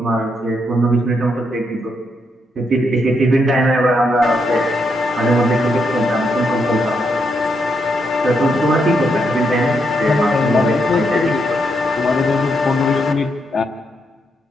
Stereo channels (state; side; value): normal; both; correlation 0.79